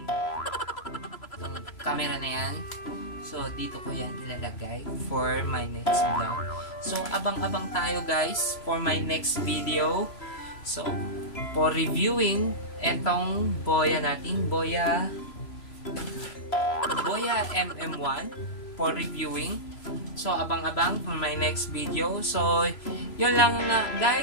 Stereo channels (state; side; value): late; right; 3.0 ms